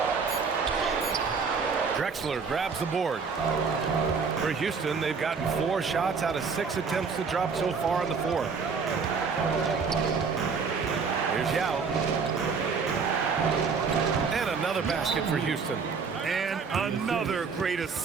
Drexler grabs the board. For Houston, they've gotten 4 shots out of 6 attempts to drop so far in the 4th. Here's Yao. And another basket for Houston. And another great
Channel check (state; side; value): quieter; left; 5.3 dB